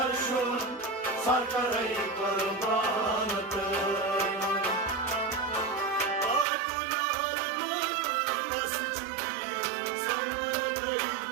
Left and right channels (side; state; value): left; drops out; at 6.5 s